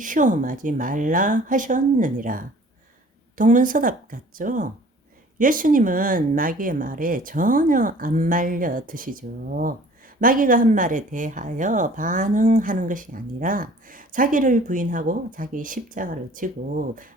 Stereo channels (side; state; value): both; normal; correlation 0.50